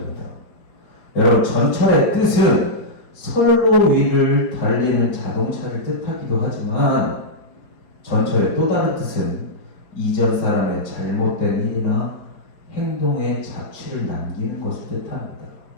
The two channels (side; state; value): right; late; 4.8 ms